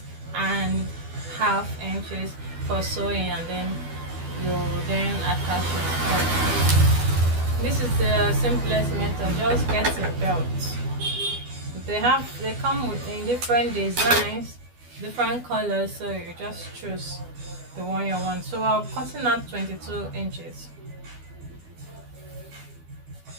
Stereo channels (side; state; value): left; late; 12 ms